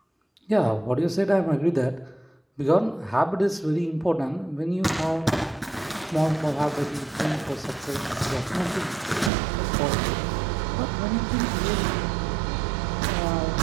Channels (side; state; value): left; drops out; at 9.3 s